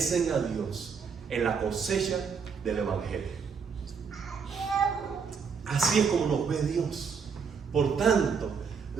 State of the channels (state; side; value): quieter; left; 6.0 dB